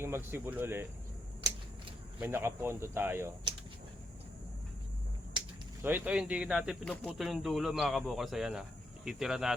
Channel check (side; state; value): both; normal; correlation 0.80